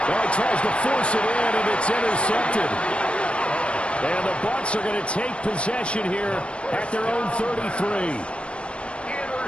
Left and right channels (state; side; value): late; right; 0.059 ms